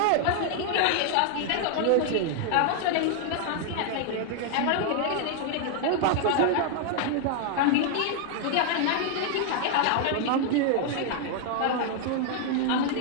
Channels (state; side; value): different; both; correlation 0.00